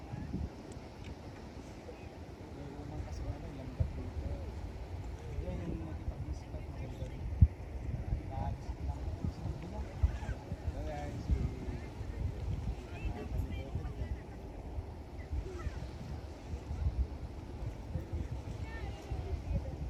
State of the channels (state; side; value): identical; both; correlation 1.00